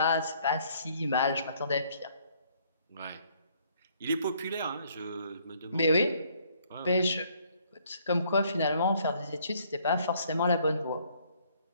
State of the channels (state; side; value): inverted; both; correlation -0.65